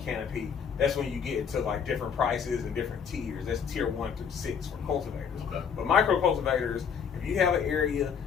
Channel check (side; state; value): right; quieter; 7.0 dB